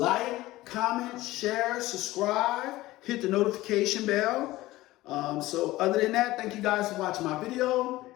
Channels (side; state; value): right; quieter; 17.6 dB